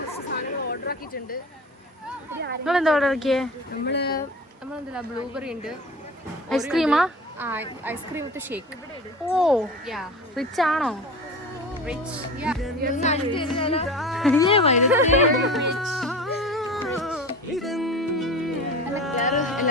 സാധനങ്ങൾ ഓർഡർ ആക്കിയിട്ടുണ്ട്. നിങ്ങളെന്താ ഓർഡർ ആക്കിയേ? നമ്മളെന്താ ബ്ലൂബെറി ഉണ്ട്. ഐസ്ക്രീമാ? Ice cream with shake. Oh rich ആണോ? റിച്ച്.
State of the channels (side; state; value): both; normal; correlation 0.34